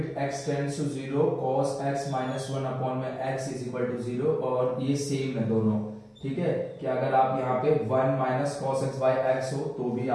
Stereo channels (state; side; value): identical; both; correlation 1.00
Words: x tends to zero cos x minus 1 upon में x is equal to zero. और ये सेम है दोनों। ठीक है, कि अगर आप यहाँ पे 1 minus cos x by x हो तो भी